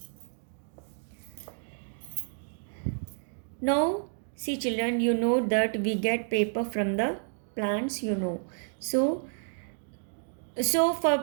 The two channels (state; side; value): silent; left; 58 dB below the other